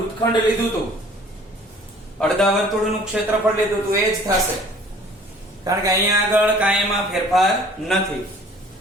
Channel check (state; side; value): normal; both; correlation 0.52